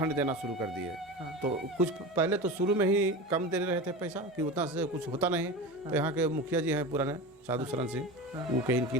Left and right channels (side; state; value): both; normal; correlation 0.28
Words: देना शुरू कर दिए। तो कुछ पहले तो शुरू में ही कम दे रहे थे पैसा, कि उतना से कुछ होता नहीं। तो यहाँ के मुखिया जी हैं पुराने, साधु शरण सिंह, वो कहीं की